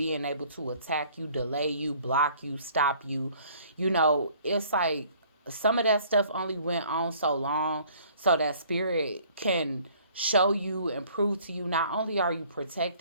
able to attack you, delay you, block you, stop you. It's like some of that stuff only went on so long so that Spirit can show you and prove to you not only are you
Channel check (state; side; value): inverted; both; correlation -0.56